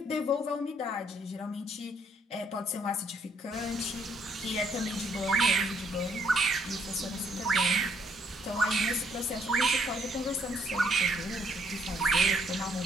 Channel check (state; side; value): normal; both; correlation 0.68